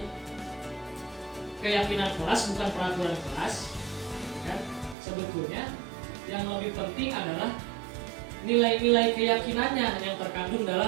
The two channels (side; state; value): left; drops out; at 5.0 s